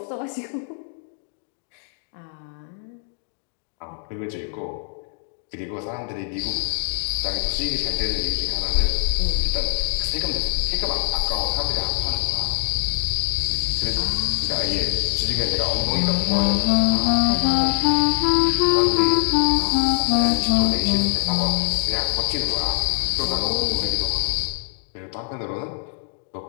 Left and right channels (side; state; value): right; silent; 58 dB below the other